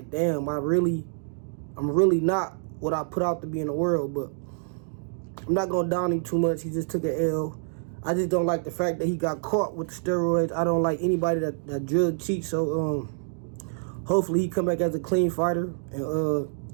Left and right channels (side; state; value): left; silent; digital silence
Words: damn, I'm really not what I put out to be in the world, but I'm not going to down him too much. He just took an L. I just don't like the fact that he got caught with the steroids. I don't like anybody that drug cheats, so hopefully he come back as a clean fighter,